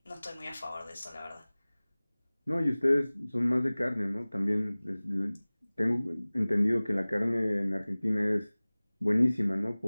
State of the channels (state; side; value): inverted; both; correlation -0.99